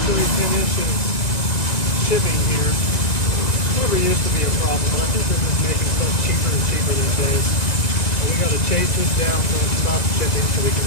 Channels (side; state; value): right; late; 1.9 ms